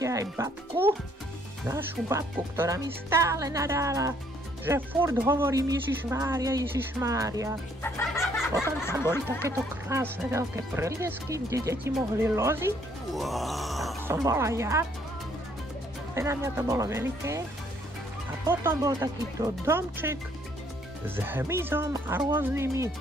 aj babku, našu babku, ktorá mi stále nadáva, že furt hovorím Ježišmária, Ježišmária. Potom tam boli takéto krásne veľké preliesky, kde deti mohli loziť. Tam som bola ja. Na mňa to bolo veľké. A potom bol takýto domček s hmyzom a rôznymi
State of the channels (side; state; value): both; normal; correlation 0.65